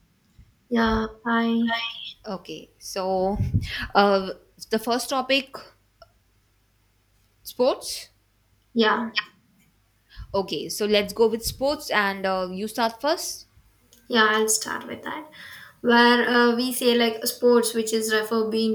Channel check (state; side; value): identical; both; correlation 1.00